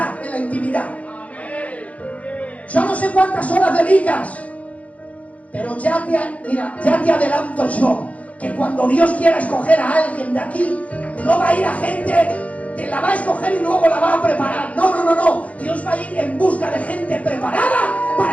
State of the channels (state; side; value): late; right; 0.066 ms